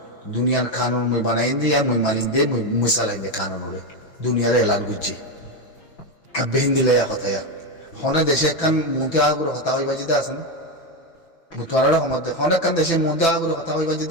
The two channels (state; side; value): late; right; 6.0 ms